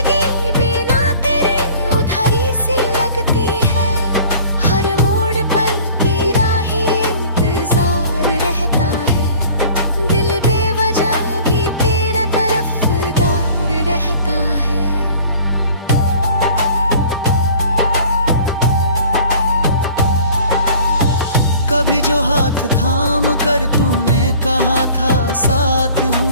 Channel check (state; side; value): inverted; both; correlation -0.48